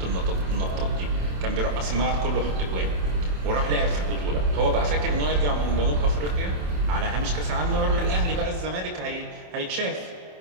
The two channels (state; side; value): late; left; 27 ms